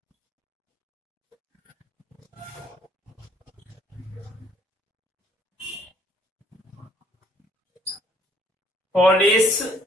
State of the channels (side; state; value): both; normal; correlation 0.60